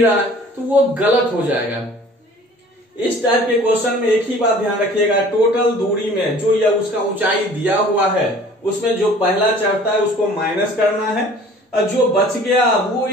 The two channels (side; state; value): both; normal; correlation 0.49